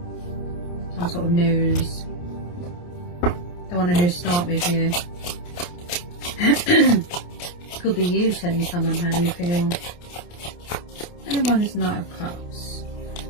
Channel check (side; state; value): right; late; 28 ms